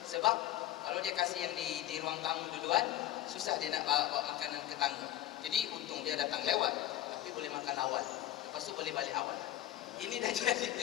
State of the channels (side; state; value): right; quieter; 13.2 dB